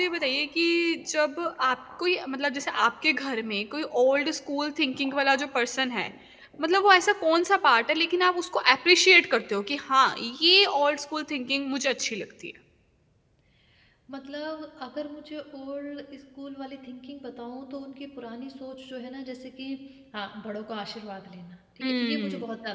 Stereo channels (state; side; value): identical; both; correlation 1.00